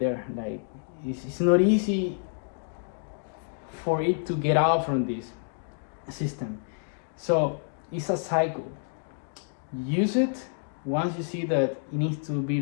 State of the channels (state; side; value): silent; right; digital silence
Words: Like, it's not easy for it to get out from this system. So it's a cycle. Use it. Once you see that it needs to be